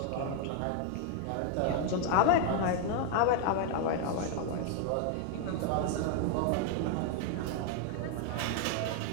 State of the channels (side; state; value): both; different; correlation 0.00